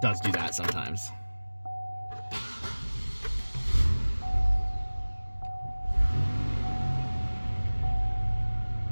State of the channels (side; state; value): both; inverted; correlation -1.00